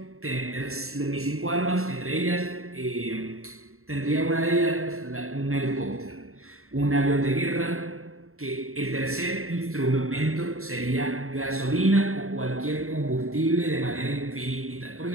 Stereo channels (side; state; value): left; late; 0.62 ms